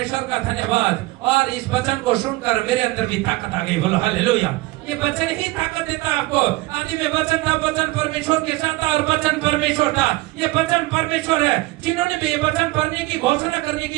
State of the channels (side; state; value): left; quieter; 20.6 dB